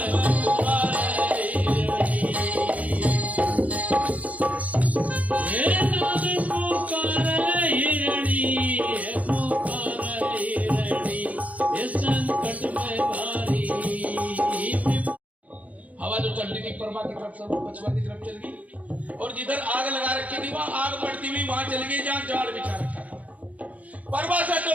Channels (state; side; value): late; left; 0.071 ms